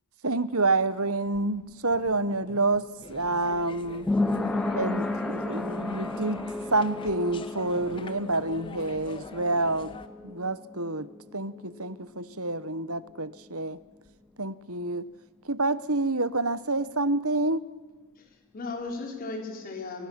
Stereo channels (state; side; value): normal; both; correlation -0.19